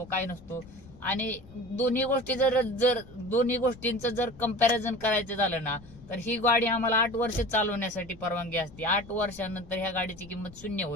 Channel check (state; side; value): noise; left; rumble, 20 dB below the sound